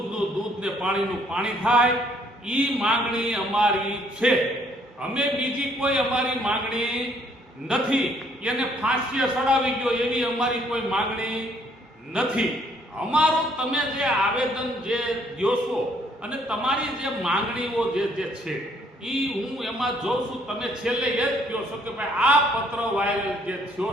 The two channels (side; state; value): both; normal; correlation 0.65